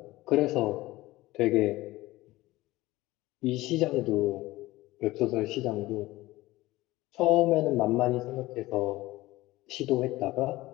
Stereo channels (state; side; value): quieter; right; 18.4 dB